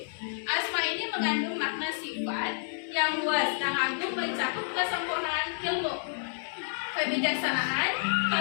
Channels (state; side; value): silent; right; 58 dB below the other